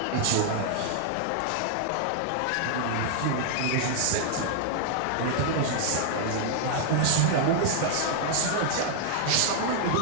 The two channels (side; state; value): both; different; correlation 0.00